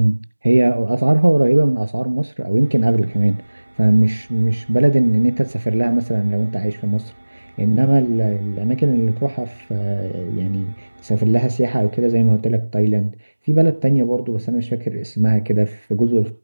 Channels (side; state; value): both; inverted; correlation -1.00